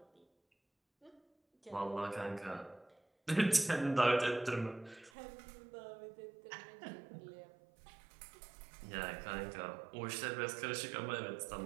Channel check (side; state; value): left; drops out; at 5.1 s